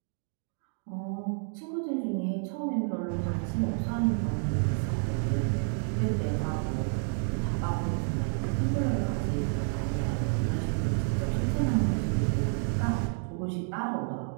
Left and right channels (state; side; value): silent; left; 56 dB below the other